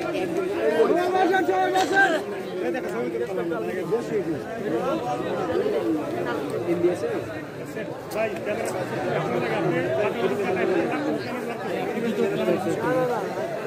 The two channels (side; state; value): both; identical; correlation 1.00